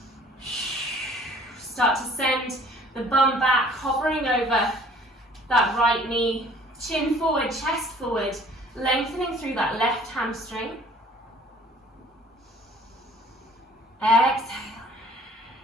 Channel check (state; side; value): normal; both; correlation 0.54